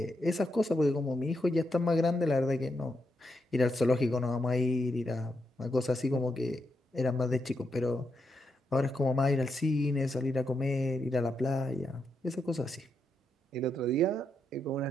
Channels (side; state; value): both; normal; correlation 0.82